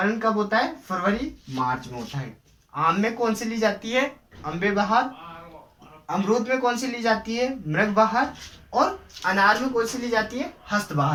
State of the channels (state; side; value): identical; both; correlation 1.00